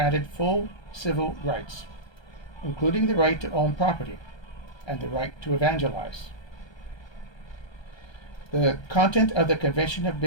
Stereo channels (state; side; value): late; right; 1.3 ms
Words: full civil rights, including the right to own property and the right to evangelize. The content of the Convention of